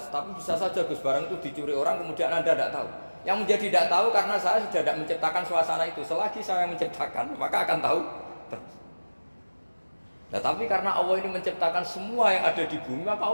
tapi bisa saja Gus barang itu dicuri orang kemudian Anda tidak tahu. Yang menjadi tidak tahu karena saya sudah tidak menciptakan suasana itu. Selagi saya menciptakan, maka akan tahu terus. Nah, tapi karena Allah ini menciptakan semua yang ada di bumi, maka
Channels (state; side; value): inverted; both; correlation -1.00